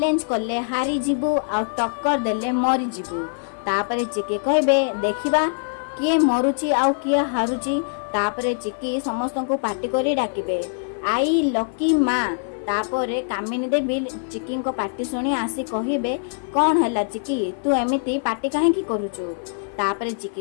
कले हारी जीवु आ टक्कर देले मरी जीवु तापरे चिक्की कहबे देखिबा किए मरुची आउ किए हारुची तापरे चिक्की समस्त को पार्टी करी डाकिबे आई लकी माँ तापरे कामिनी देवी चिक्की को पार्टी शुणी आसी कहबे कौन है चिक्की तू एमिति पार्टी काहे करुचु तापरे चिक्की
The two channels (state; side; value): silent; right; 57 dB below the other